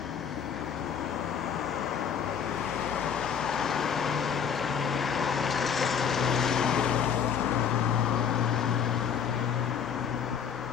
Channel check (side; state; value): right; quieter; 7.4 dB